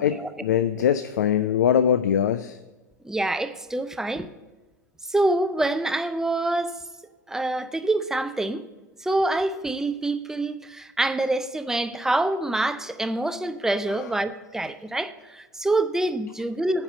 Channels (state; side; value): normal; both; correlation 0.46